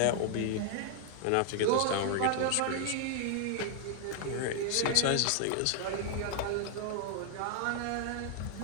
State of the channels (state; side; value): different; both; correlation 0.00